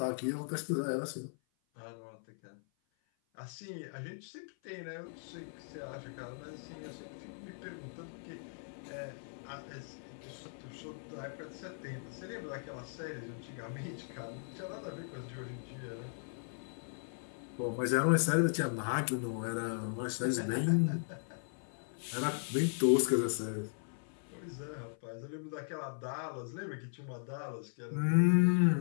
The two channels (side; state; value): right; silent; 53 dB below the other